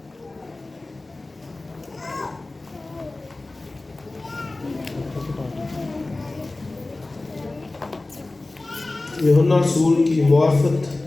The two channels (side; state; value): right; quieter; 3.0 dB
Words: یوحنا رسول کی